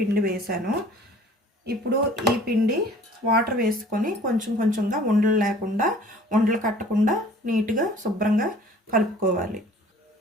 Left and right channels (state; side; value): normal; both; correlation 0.50